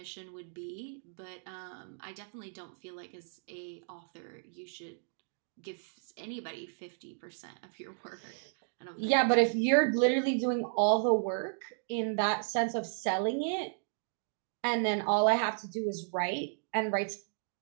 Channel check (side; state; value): left; silent; digital silence